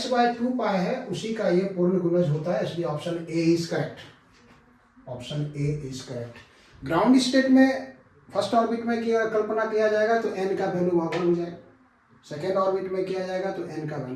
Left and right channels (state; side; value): identical; both; correlation 1.00